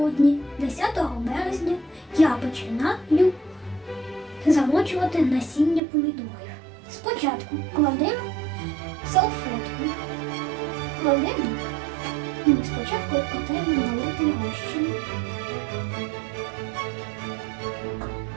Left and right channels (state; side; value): drops out; left; at 5.8 s